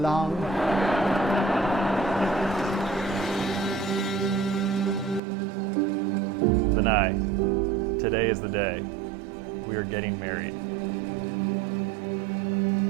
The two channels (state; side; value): drops out; left; at 5.2 s